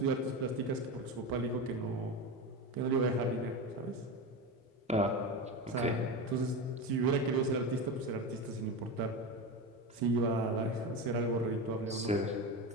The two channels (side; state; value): both; normal; correlation 0.21